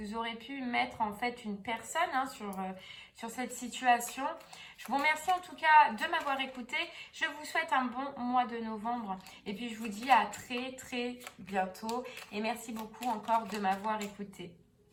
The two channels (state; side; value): identical; both; correlation 1.00